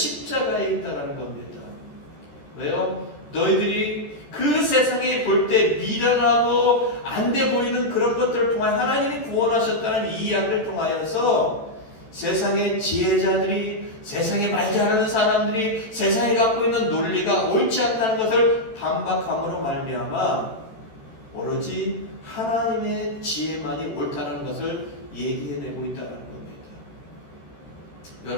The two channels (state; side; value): late; right; 13 ms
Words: 있다는 겁니다. 왜요? 너희들이 그 세상에 볼 때 미련하고 안 돼 보이는 그런 것들을 통하여 하나님이 구원하셨다는 이 이야기를 통하여서 세상의 지혜자들이, 세상에 말 잘하는 사람들이 세상에 갖고 있는 논리가 옳지 않다는 것을 반박함으로 말미암아 오로지 하나님의 지혜만이 옳다는 것을 얘기해내고 있다는 겁니다.